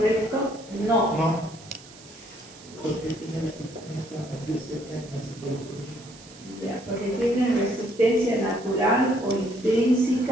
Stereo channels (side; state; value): right; noise; hiss, 20 dB below the sound